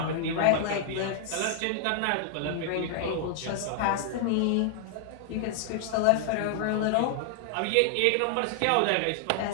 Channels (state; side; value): different; both; correlation -0.01